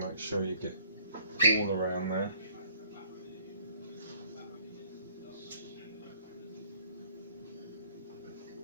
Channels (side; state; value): both; inverted; correlation -0.59